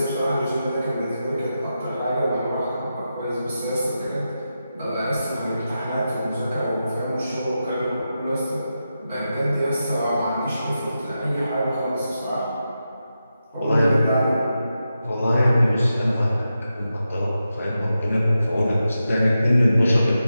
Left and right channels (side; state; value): both; inverted; correlation -0.89